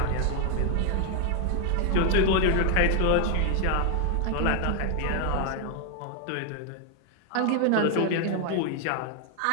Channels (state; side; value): different; both; correlation 0.00